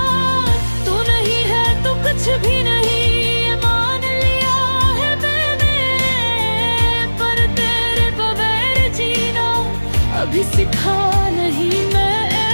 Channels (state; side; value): inverted; both; correlation -1.00